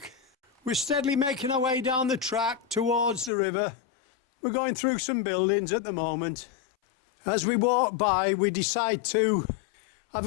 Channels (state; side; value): drops out; right; at 3.3 s